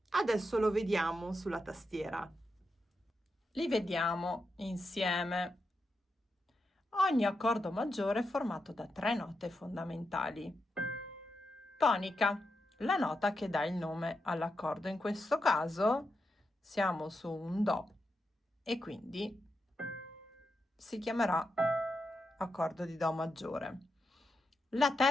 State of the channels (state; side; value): normal; both; correlation 0.86